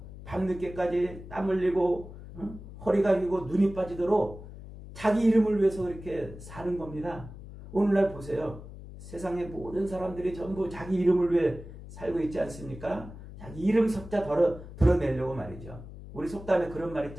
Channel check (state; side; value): noise; left; hum, 14 dB below the sound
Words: 밤늦게까지 땀 흘리고 허리가 휘고 눈이 빠지도록 자기 이름을 위해서 그렇게 사는 겁니다. 오늘날 보세요. 세상의 모든 사람들이 전부 자기 이름을 위해 살고 있지 않습니까? 자기 이름 석자 드러내려고 말이죠. 우리 속담에 그런 말